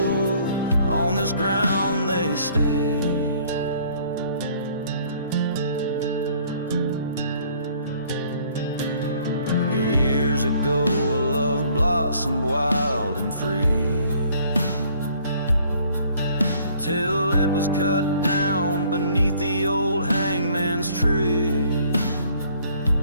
on this ground they stay. Years ago a love blossomed wild and free, till it was cut down beneath the old hangman's tree.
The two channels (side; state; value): both; inverted; correlation -0.59